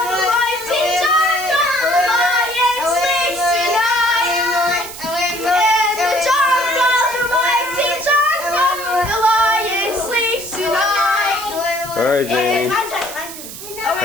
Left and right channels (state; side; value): noise; right; hiss, 12 dB below the sound